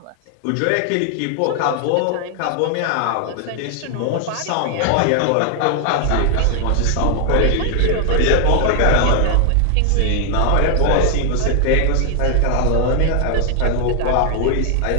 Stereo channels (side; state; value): both; different; correlation 0.00